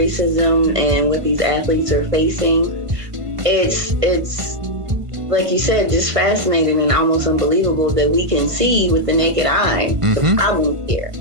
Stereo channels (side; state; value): left; late; 1.5 ms